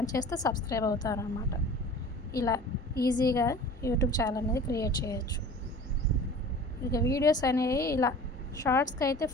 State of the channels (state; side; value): normal; both; correlation 0.42